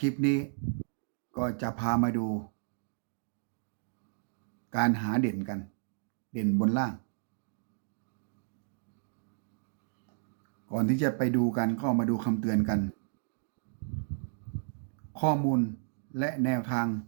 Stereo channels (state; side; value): silent; left; digital silence